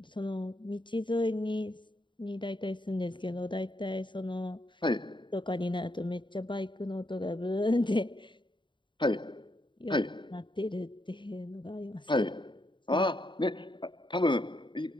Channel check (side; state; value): right; late; 0.23 ms